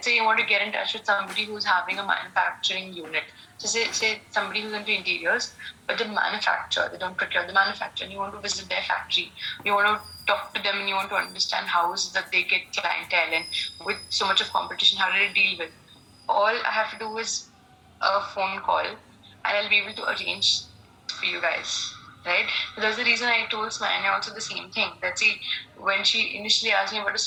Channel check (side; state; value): both; identical; correlation 1.00